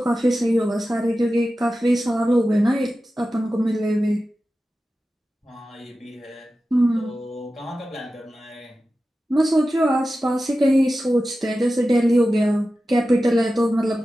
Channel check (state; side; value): normal; both; correlation 0.94